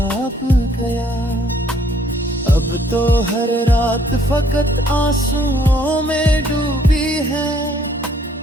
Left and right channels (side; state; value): both; normal; correlation 0.64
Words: गया। अब तो हर रात फकत आंसुओं में डूबी है,